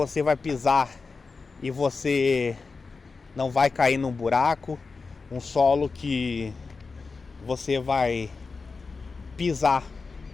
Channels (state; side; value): quieter; right; 4.4 dB